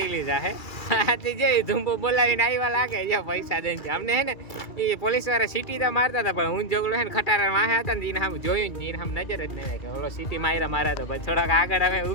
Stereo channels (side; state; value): right; late; 2.3 ms